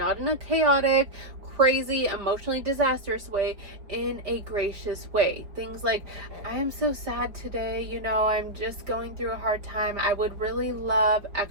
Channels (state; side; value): late; left; 4.8 ms